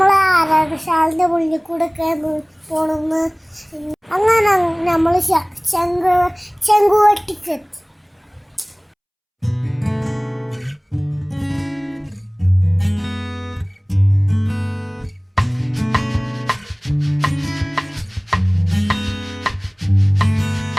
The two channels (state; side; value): identical; both; correlation 1.00